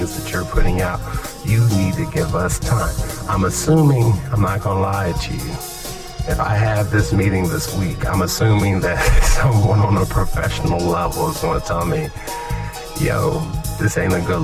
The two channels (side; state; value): both; identical; correlation 1.00